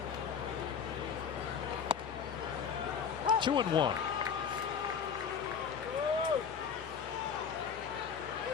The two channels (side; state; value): right; quieter; 6.9 dB